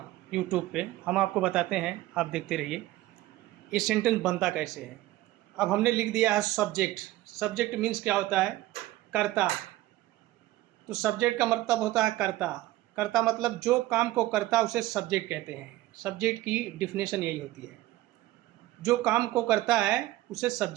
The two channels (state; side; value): quieter; left; 16.4 dB